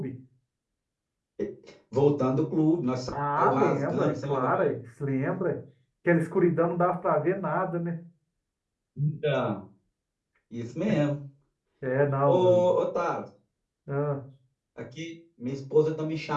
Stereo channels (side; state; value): both; identical; correlation 1.00